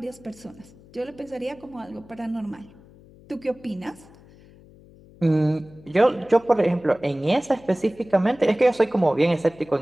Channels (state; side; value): noise; left; hum, 24 dB below the sound